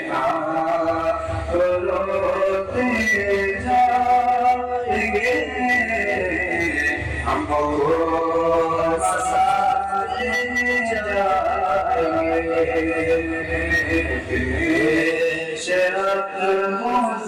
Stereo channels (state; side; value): identical; both; correlation 1.00